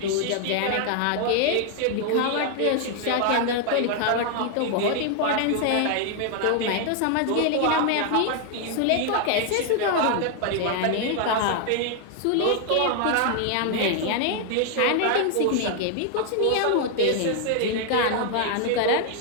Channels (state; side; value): different; both; correlation 0.00